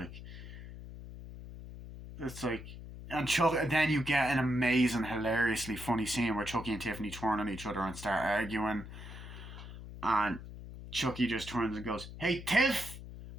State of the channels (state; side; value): noise; left; hum, 12 dB below the sound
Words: it's like, and then you get an amazing, hilariously funny scene where Chucky and Tiffany turn on each other and start arguing, and Chucky just turns and goes, hey, Tiff,